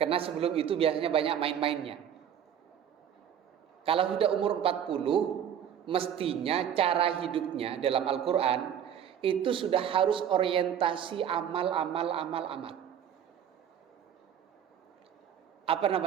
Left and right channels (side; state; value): left; quieter; 9.2 dB